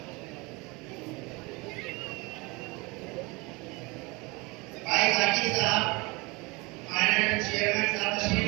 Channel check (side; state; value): left; quieter; 25.7 dB